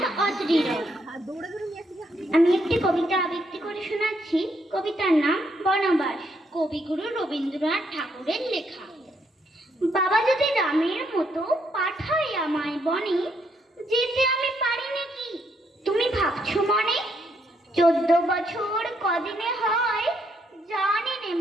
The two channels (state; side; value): normal; both; correlation 0.74